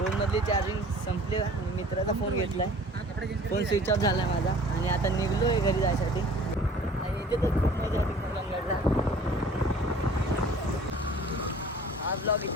मधली चार्जिंग संपली आणि मित्राचा फोन घेतलाय फोन स्विच ऑफ झाला माझा आणि आता निघलोय घरी जायसाठी आणि इथे तर खूप मजा आली कलंगडला हा ब्लॉग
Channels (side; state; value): both; normal; correlation 0.48